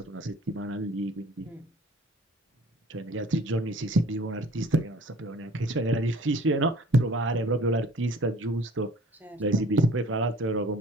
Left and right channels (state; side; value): normal; both; correlation 0.50